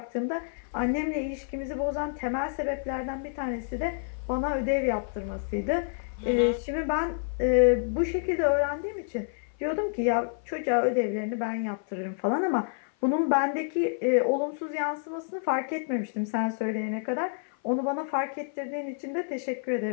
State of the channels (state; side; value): silent; right; 56 dB below the other